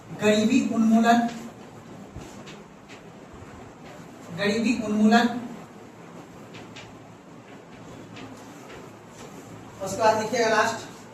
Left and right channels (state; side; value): identical; both; correlation 1.00